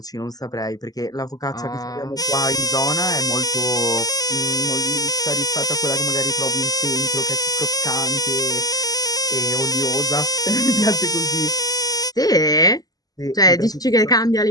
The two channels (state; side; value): late; right; 0.18 ms